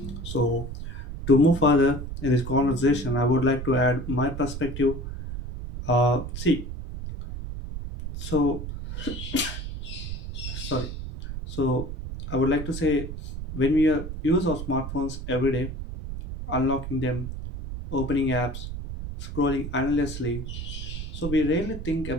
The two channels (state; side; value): noise; right; rumble, 7 dB below the sound